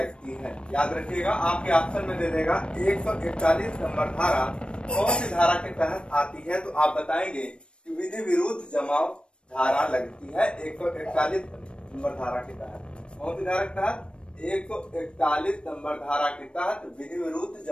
है। याद रखिएगा, आपके ऑप्शन में दे देगा 141 नंबर धारा कौन सी धारा के तहत आती है, तो आप बताएंगे कि विधि विरुद्ध जमाव धारा लगती है 141 नंबर धारा के तहत। कौन सी धारा के तहत? 141 नंबर धारा के तहत विधि विरुद्ध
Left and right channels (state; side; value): late; right; 0.056 ms